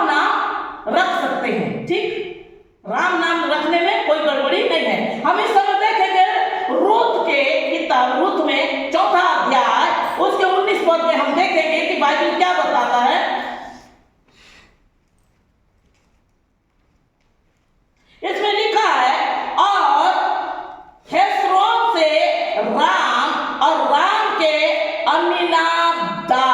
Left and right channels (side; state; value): both; identical; correlation 1.00